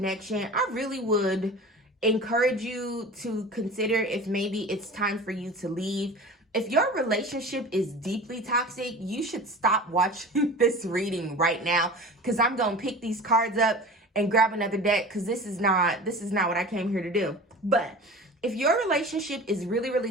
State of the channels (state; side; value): normal; both; correlation 0.36